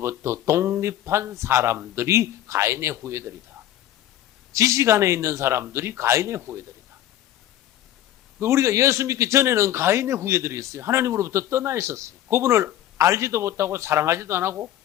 독립한 사람들이 가인의 후예들이다. 지식 안에 있는 사람들이 가인의 후예들이다. 우리가 예수 믿기 전에는 가인의 후예들이었어요. 하나님으로부터 떠나 있었어요. 그분을 알지도 못하고 사랑하지도 안 하고,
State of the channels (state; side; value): quieter; right; 12.6 dB